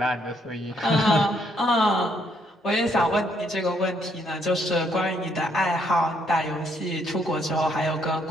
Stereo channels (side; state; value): both; normal; correlation 0.71